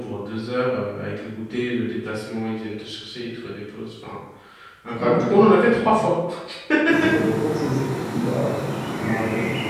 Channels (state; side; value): identical; both; correlation 1.00